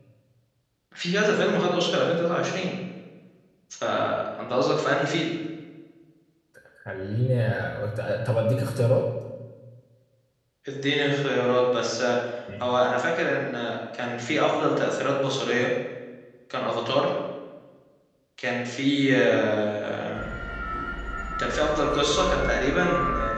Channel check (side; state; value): both; identical; correlation 1.00